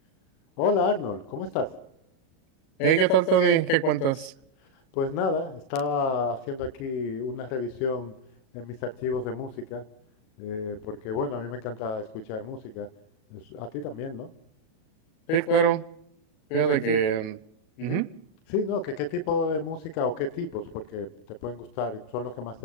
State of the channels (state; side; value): late; right; 37 ms